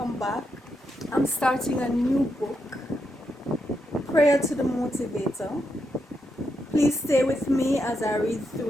back. I'm starting a new book, Prayer to the Motivator. Please stay with me as I read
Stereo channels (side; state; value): both; normal; correlation 0.83